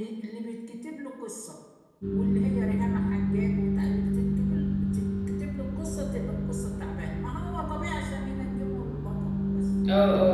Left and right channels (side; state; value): both; identical; correlation 1.00